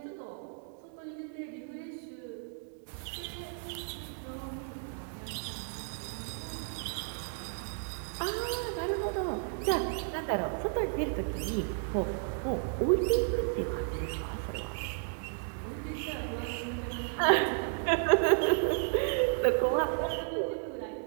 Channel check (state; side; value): silent; left; 56 dB below the other